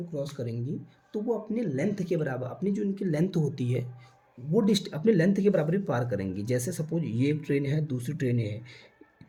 क्रॉस करेंगी तो वो अपने लेंथ के बराबर, अपनी जो इनकी लेंथ होती है वो अपने लेंथ के बराबर ही पार करेंगी। जैसे सपोज ये एक ट्रेन है, दूसरी ट्रेन है,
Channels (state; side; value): identical; both; correlation 1.00